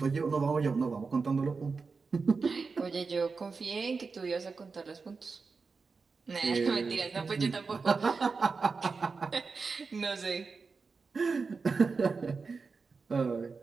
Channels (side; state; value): left; quieter; 4.7 dB